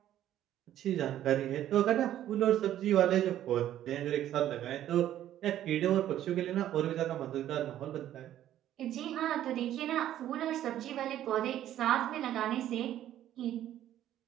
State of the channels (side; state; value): left; quieter; 12.1 dB